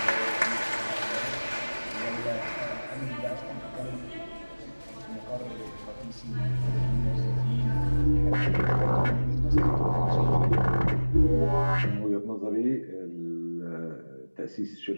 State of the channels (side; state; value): both; inverted; correlation -1.00